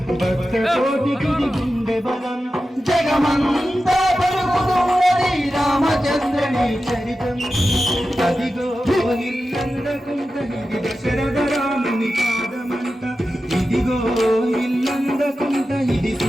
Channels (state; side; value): normal; both; correlation 0.92